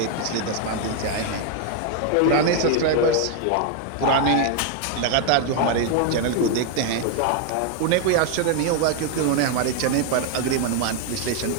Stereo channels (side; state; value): both; different; correlation 0.01